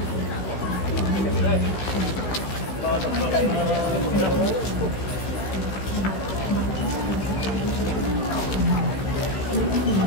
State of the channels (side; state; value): right; late; 16 ms